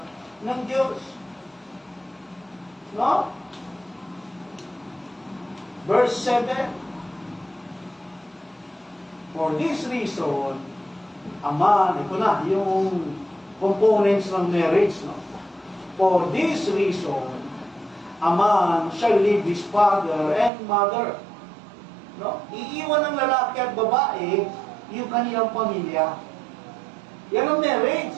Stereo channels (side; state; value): left; drops out; at 20.5 s